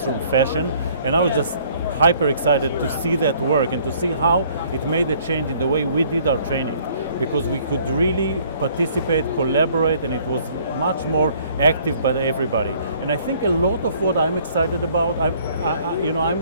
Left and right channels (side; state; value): both; inverted; correlation -0.60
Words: fashion, and I was just hyper excited to see that work and to see how it made a change in the way we did our training, because we could really participate, collaborate, and it was much more active by everybody. And I think a lot of what I'm excited about,